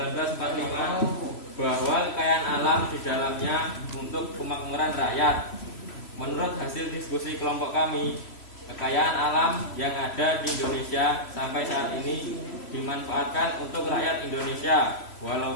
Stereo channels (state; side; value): late; right; 3.0 ms